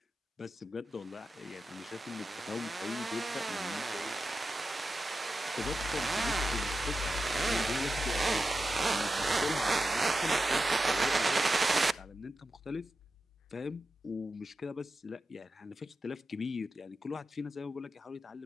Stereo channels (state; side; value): normal; both; correlation 0.90